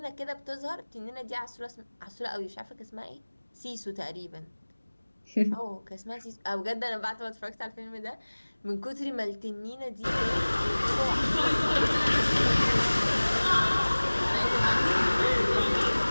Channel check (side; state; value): both; inverted; correlation -1.00